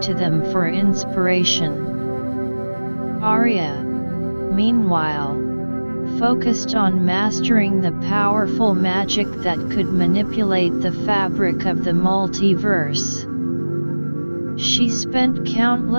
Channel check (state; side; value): inverted; both; correlation -1.00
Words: to them for inspiration. Aria, meanwhile, focused on mastering the powerful magic that could manipulate the fabric of the multiverse. She spent